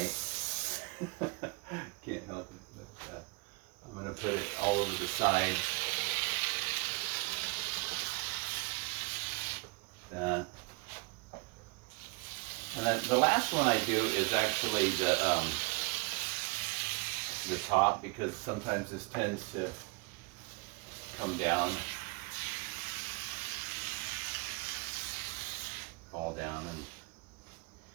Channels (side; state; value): left; quieter; 30.9 dB